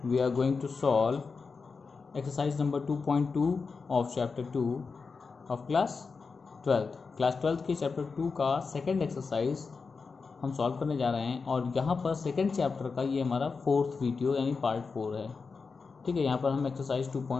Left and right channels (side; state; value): right; quieter; 4.8 dB